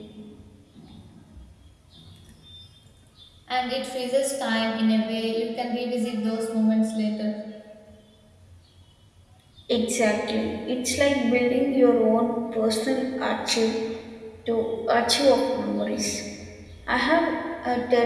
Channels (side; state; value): both; identical; correlation 1.00